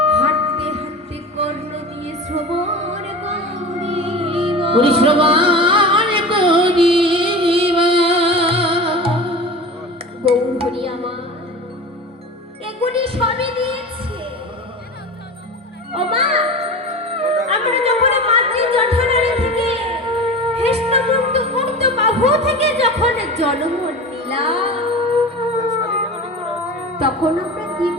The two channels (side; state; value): both; normal; correlation 0.32